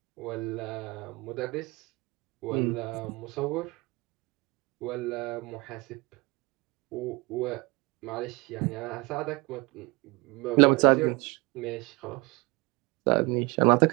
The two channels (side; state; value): left; quieter; 25.9 dB